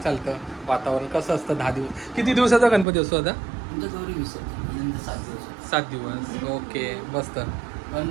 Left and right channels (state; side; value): drops out; left; at 2.9 s